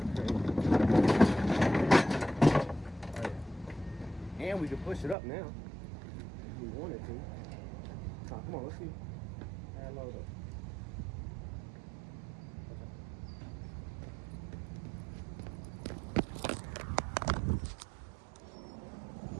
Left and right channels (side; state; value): left; drops out; at 5.2 s